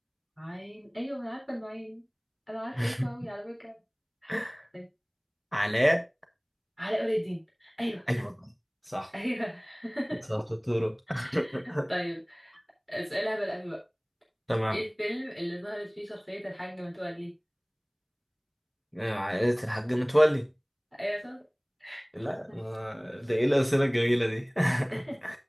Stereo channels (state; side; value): identical; both; correlation 1.00